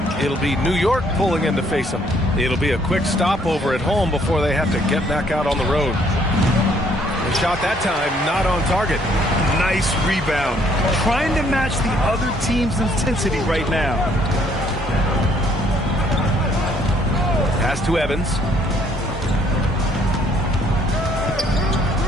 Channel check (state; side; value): normal; both; correlation 0.65